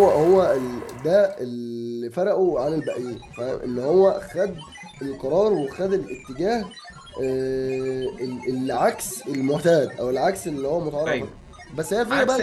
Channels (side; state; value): both; identical; correlation 1.00